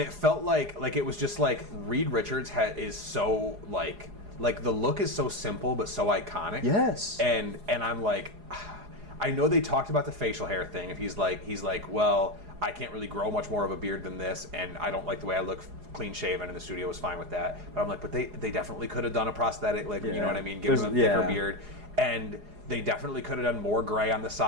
it felt like it was just like Reed Richards is so, like the look is so simple but so iconic. Yes. And I'm like, I know they talked about the facial hair thing. If he's like, well, I can't really grow much more of a beard than this, and I don't like the way I look clean shaven, and the studio was fine with that. But I'm like, but they definitely could have done a prosthetic, like, you know what I mean, give him a thicker beard, and they definitely could have done more gray on the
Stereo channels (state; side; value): late; left; 4.8 ms